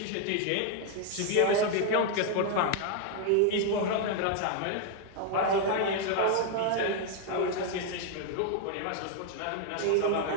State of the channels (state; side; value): different; both; correlation 0.00